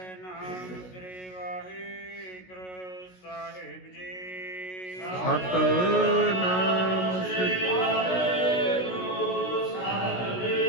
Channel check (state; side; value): late; right; 16 ms